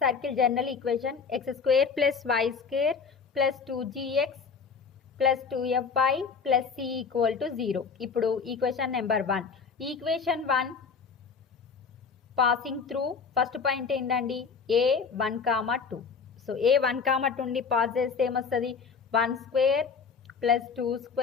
circle general equation, x² + y² + 2gx + 2fy + c = 0. ఇప్పుడు equation number 1, equation 1 passing through first point ఏంటండి, a1, 2. సో a1, 2ని పాస్ చేస్తే ఏమొస్తుంది, 1² +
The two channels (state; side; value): quieter; right; 5.6 dB